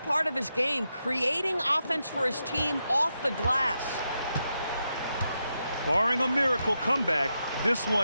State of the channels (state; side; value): inverted; both; correlation -0.86